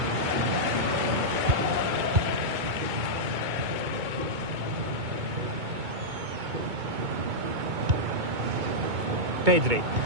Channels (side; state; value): left; late; 2.2 ms